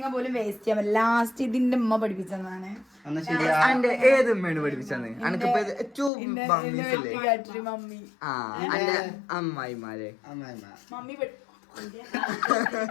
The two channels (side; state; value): right; drops out; at 6.1 s